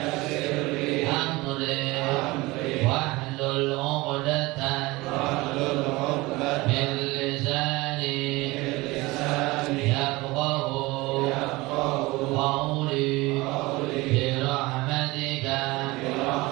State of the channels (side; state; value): left; quieter; 21.7 dB